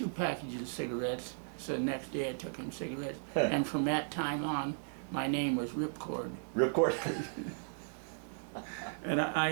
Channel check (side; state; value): left; silent; digital silence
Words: packages of cigarettes. So the next day I took him cigarettes, and from that time on, my name was Ripcord. Ripcord? And I